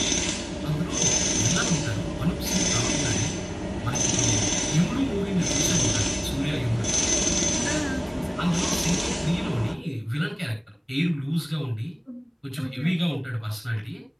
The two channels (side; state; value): both; identical; correlation 1.00